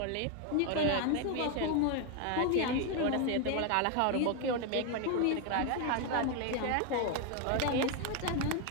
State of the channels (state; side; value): different; both; correlation 0.01